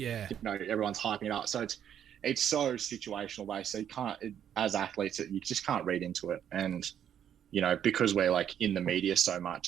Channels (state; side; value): quieter; left; 9.5 dB